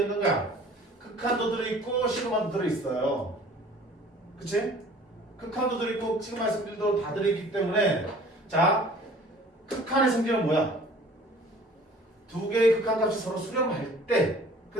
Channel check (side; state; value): both; normal; correlation 0.49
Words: 거야. 극한도 들어있고 시그마도 들어있어요. 그치? 극한도 들어있고 시그마의 성질도 다 들어있기 때문에 자, 극한의 성질은 뭐야? 두 개의 극한값이 서로 수렴할 때